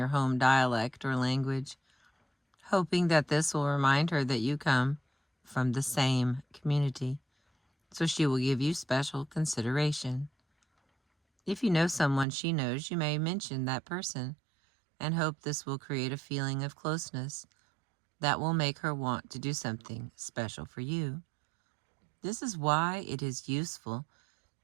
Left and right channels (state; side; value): drops out; left; at 12.2 s